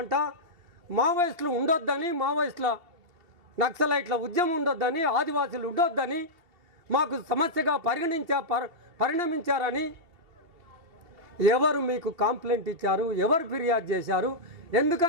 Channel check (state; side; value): late; left; 2.8 ms